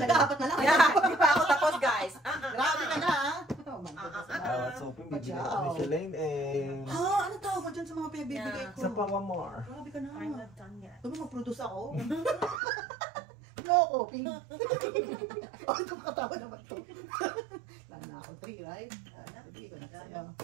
apat na lang. Yeah, di pa ako tapos guys. Grabe ka na ah. Oh my I was hoping bibigyan ako ni Shalane eh. Ha? Ano tawag mo dyan sa mga pinagbibigay ko? Sa Pawamar. Grabe ka na. I'm not done yet. Sabi mag-produce ako. No, coping. Oh, ito makatawa naman to. Lalo na ako 3, right? Sige, ko na sa'yo.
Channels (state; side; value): drops out; left; at 12.6 s